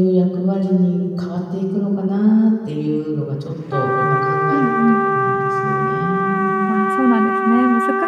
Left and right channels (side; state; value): both; identical; correlation 1.00